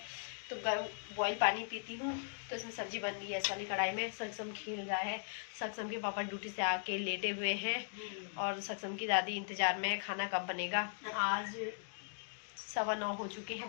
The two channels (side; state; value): right; silent; digital silence